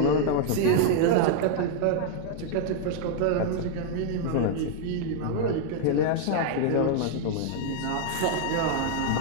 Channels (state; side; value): different; both; correlation 0.00